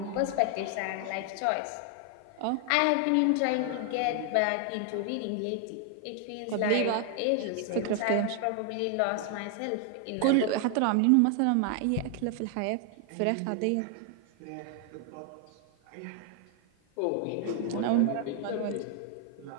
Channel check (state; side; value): different; both; correlation 0.00